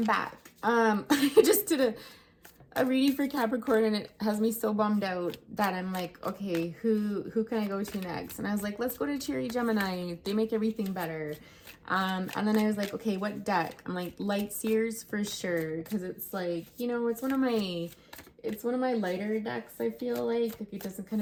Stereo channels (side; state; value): both; identical; correlation 1.00